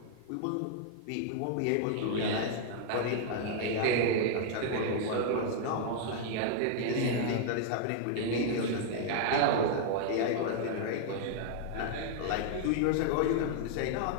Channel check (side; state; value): both; different; correlation -0.01